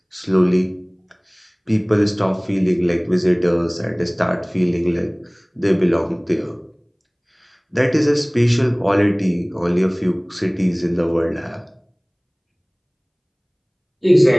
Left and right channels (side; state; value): both; identical; correlation 1.00